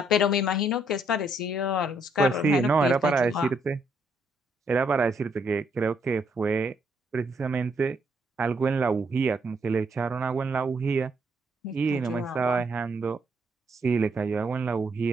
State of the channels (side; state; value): both; normal; correlation 0.73